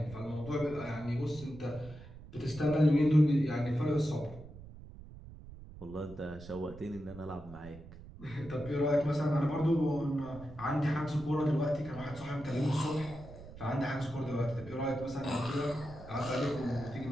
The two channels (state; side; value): noise; right; rumble, 16 dB below the sound